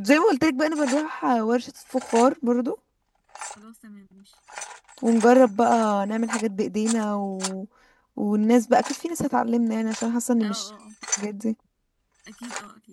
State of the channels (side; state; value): both; identical; correlation 1.00